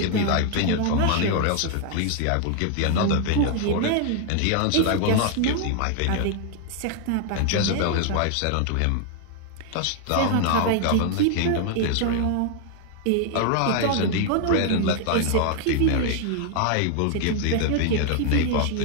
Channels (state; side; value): different; both; correlation 0.00